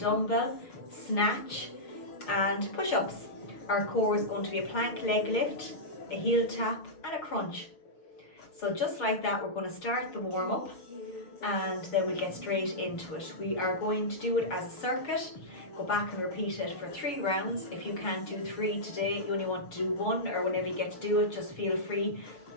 snatch and push-ups. Our core is going to be a plank leg lift, a heel tap and a crunch. So just like that, we're going to start the warm up and then we'll get straight into it. We are going to do it as a circuit. Go back and repeat it for 3 rounds. If you can't do 3 today, you only want to do 1, or whenever you get to do it, just feel free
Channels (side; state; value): right; late; 6.7 ms